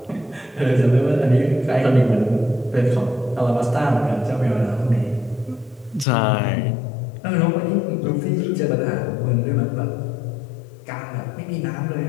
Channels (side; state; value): right; drops out; at 6.1 s